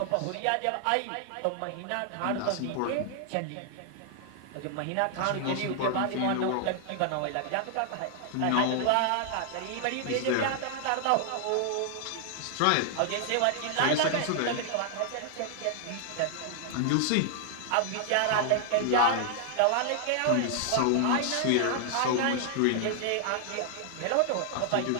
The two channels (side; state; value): both; different; correlation 0.00